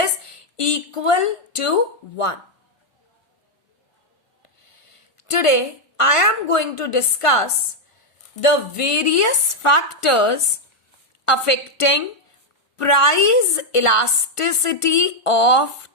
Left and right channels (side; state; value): right; late; 1.5 ms